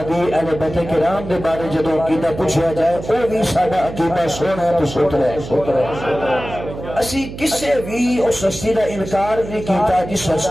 دی اہل بیت کرام دے بارے جدو عقیدہ پوچھا جائے او بھی ساڈا عقیدہ سونا ہے تو ستھرا ہے۔ اسی کسے بھی اس ہستی دا انکار نہیں کیتا جس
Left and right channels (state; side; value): noise; right; hum, 11 dB below the sound